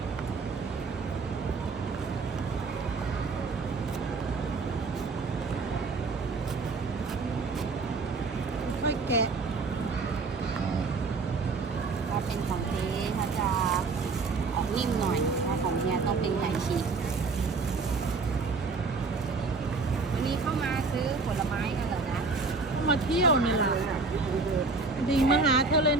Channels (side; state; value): left; quieter; 4.2 dB